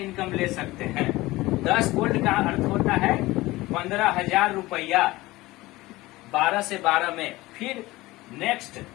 ले सकते हैं। 10 गोल्ड का अर्थ होता है 15,000 रुपया 12 से 12 में। फिर नेक्स्ट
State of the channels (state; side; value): quieter; right; 19.3 dB